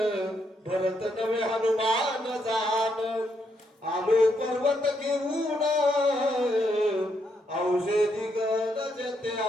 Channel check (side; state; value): both; normal; correlation 0.77